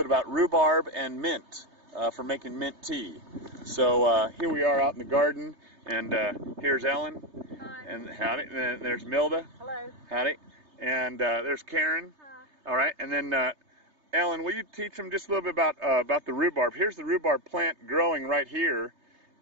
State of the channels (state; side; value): late; left; 3.3 ms